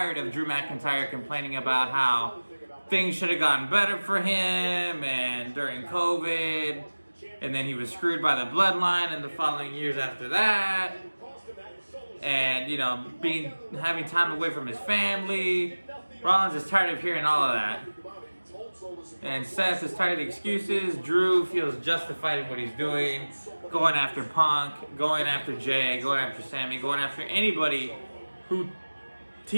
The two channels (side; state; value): both; inverted; correlation -1.00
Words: of Drew McIntyre complaining about how things should have gotten better for him and during COVID. And then he was screwed by the bloodline in the following years after that. And, you know, having time away from his family. Rollins is tired of hearing all of that. And Seth is tired of the excuses. Drew feels justified in what he's doing. Going after Punk, going after Jay, going after Sammy, going after anybody who